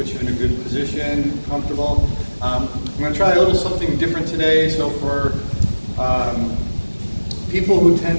you in a good position, comfortable. I'm going to try a little something different today. So for people who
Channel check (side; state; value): both; inverted; correlation -1.00